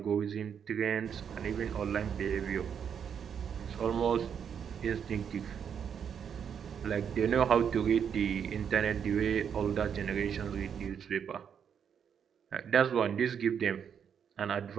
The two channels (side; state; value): left; quieter; 7.7 dB